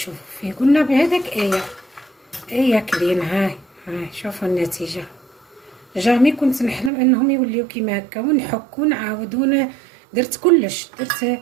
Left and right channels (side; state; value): left; drops out; at 6.9 s